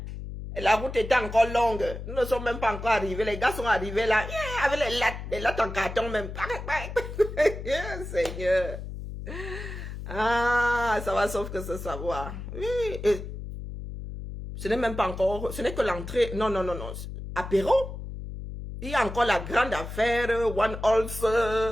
La route était encore longue. Nous ne sommes même pas encore arrivés. Les gars sont arrivés là, avec les lattes en carton même. Seigneur. Ah, ça va sauf que ce savoir. Oui, et ce n'est même pas encore, ce n'est que l'entrée. Non. Apéro. Il y a encore la grande affaire, One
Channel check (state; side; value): noise; left; hum, 9 dB below the sound